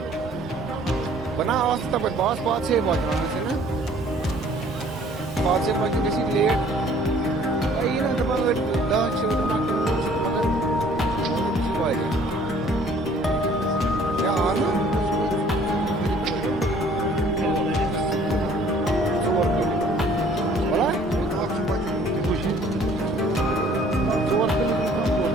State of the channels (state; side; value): normal; both; correlation 0.56